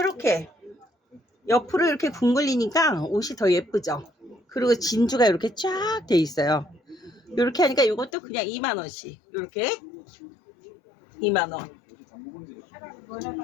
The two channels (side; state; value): right; drops out; at 8.1 s